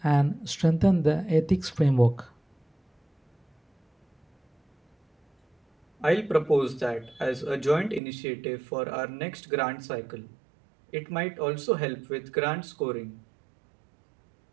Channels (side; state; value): left; drops out; at 8.0 s